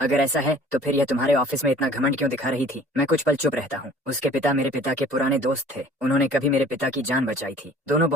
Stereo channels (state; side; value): normal; both; correlation 0.50